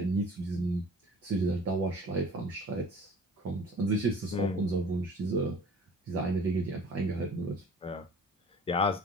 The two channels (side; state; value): both; normal; correlation 0.46